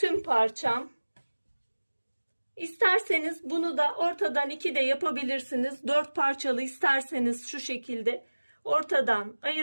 parçam. İsterseniz bunu da ortadan 2 de yapabilirsiniz. 4 parçalı isterseniz şu şekilde ortadan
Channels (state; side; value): inverted; both; correlation -1.00